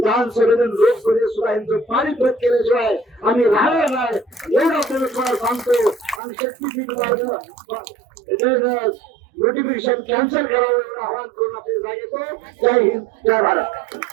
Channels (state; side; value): drops out; left; at 6.2 s